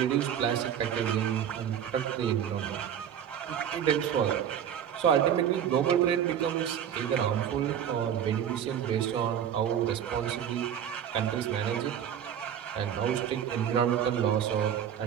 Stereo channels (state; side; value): quieter; left; 9.3 dB